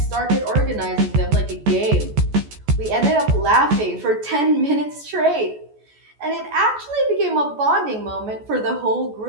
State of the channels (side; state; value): left; late; 14 ms